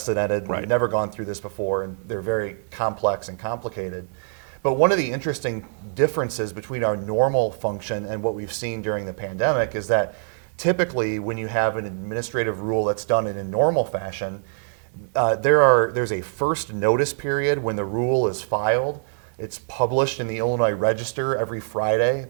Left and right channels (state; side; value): silent; left; digital silence